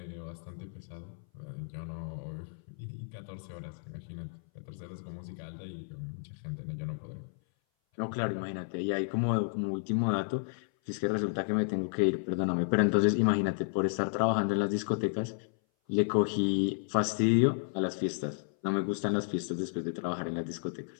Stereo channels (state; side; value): silent; right; 56 dB below the other